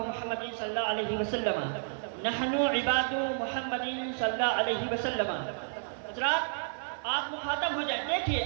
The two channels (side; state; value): left; silent; digital silence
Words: صلی اللہ علیہ وسلم۔ نحن عباد محمد صلی اللہ علیہ وسلم. حضرات آپ مخاطب ہو جائیں. دیکھیے